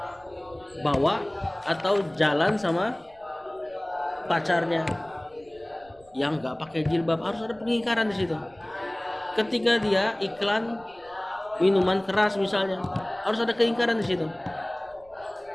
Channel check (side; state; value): right; noise; rumble, 28 dB below the sound